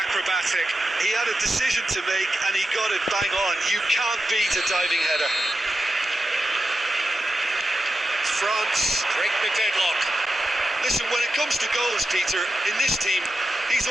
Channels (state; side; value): normal; both; correlation 0.89